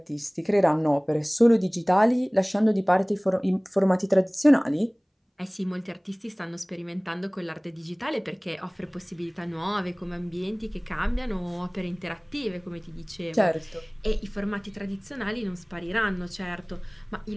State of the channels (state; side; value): identical; both; correlation 1.00